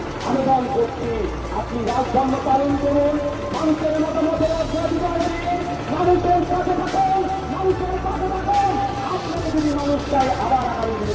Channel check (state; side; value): identical; both; correlation 1.00